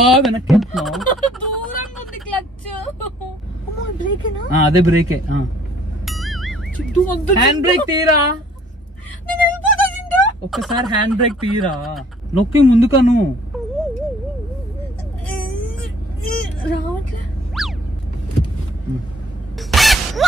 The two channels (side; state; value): both; normal; correlation 0.58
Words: వెనక్కి వెళ్తున్నావు? అదే బ్రేకే. హ్యాండ్ బ్రేక్ తీరా, ఒక్కసారి హ్యాండ్ బ్రేక్ తీరా. నొక్కి ముందుకను.